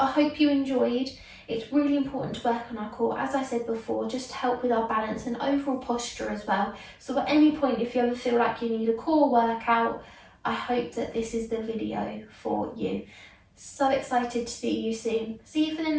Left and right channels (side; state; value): both; identical; correlation 1.00